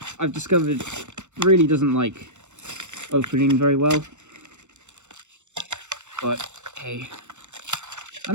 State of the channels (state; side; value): late; left; 0.84 ms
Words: I've discovered really doesn't like opening very well. But hey, I